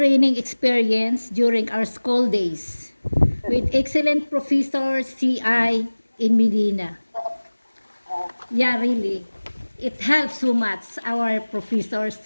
experience during our school days with excellent professor CI in Medina. Yeah, really. It helps so much, our professors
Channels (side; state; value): both; inverted; correlation -1.00